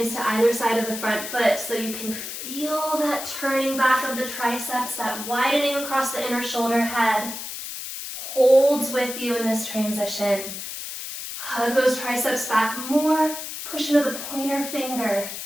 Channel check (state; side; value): noise; left; hiss, 8 dB below the sound